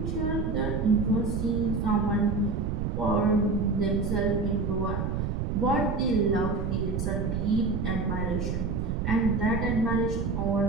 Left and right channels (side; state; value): right; noise; rumble, 1 dB below the sound